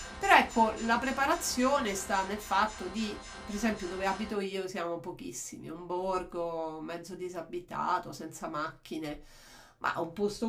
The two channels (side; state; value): both; identical; correlation 1.00